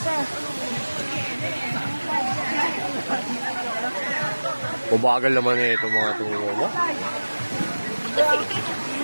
Mabagal naman eh itong mga tumulong mo.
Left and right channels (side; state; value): both; inverted; correlation -1.00